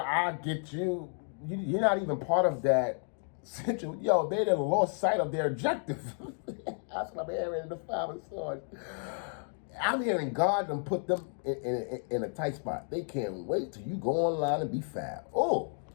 get you. You're not even part of that situation. Yo, they done lost sight of their objective. That's what I'm hearing in the Five of Swords. I'm hearing God done put them in a tight spot. They can't wait till you go online and be fab. Oh,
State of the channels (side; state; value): right; silent; 56 dB below the other